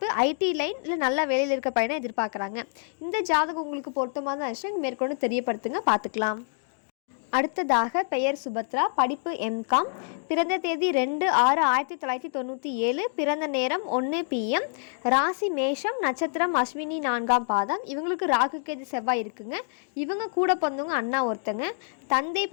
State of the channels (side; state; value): right; silent; digital silence